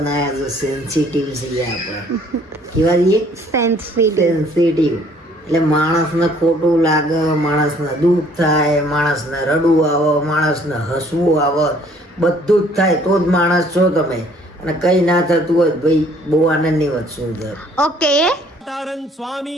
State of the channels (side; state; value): both; normal; correlation 0.59